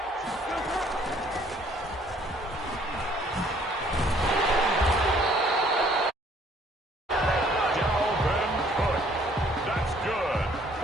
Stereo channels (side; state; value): both; normal; correlation 0.60